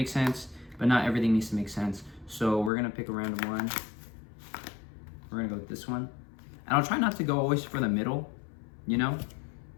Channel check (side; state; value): right; drops out; at 2.7 s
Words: sense, but not everything needs to make sense. So we're gonna pick a random one. We're gonna go with this one. And I'll try not to go always for the middle,